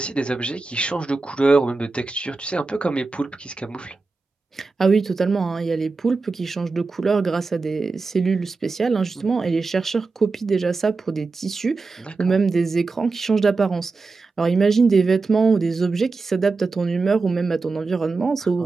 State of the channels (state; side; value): quieter; left; 4.0 dB